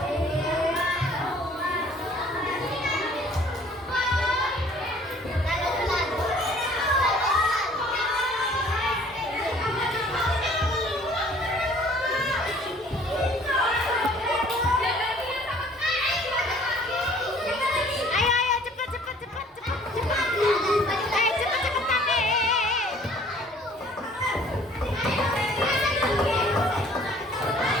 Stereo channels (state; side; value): normal; both; correlation 0.55